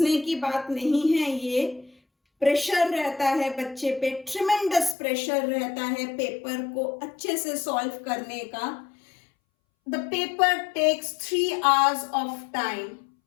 की बात नहीं है, ये प्रेशर रहता है बच्चे पे, ट्रिमेंडस प्रेशर रहता है पेपर को अच्छे से सॉल्व करने का। The paper takes 3 hours of time.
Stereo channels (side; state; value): right; drops out; at 5.0 s